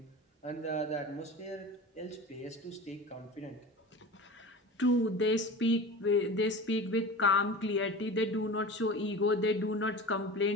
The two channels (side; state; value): both; normal; correlation 0.33